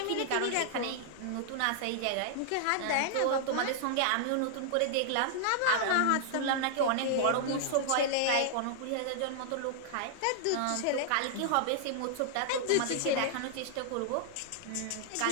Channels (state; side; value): different; both; correlation -0.01